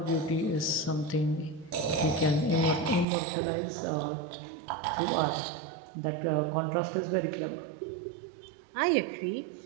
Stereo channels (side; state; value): left; drops out; at 3.1 s